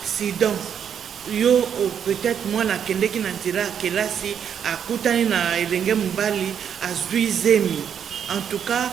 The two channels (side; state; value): left; quieter; 8.2 dB